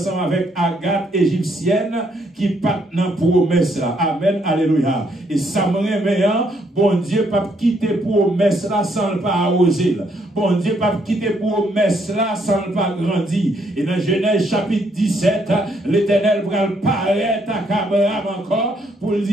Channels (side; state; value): both; normal; correlation 0.72